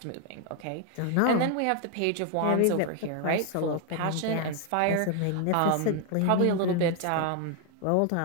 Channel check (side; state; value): both; different; correlation 0.01